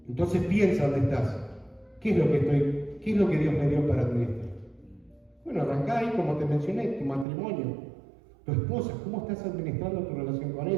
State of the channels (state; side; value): drops out; left; at 7.2 s